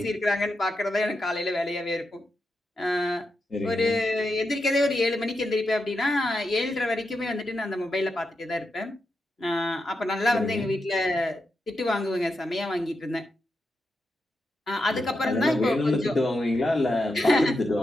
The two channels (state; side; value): normal; both; correlation 0.86